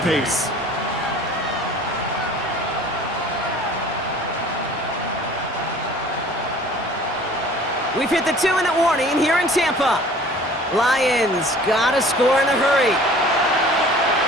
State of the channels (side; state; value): both; normal; correlation 0.48